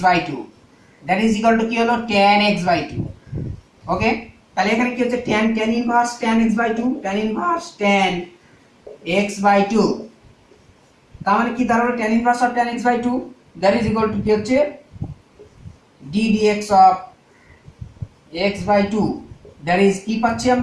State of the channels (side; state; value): both; identical; correlation 1.00